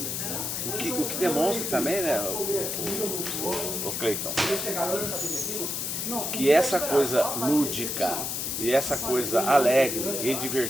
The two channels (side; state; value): left; noise; hiss, 2 dB below the sound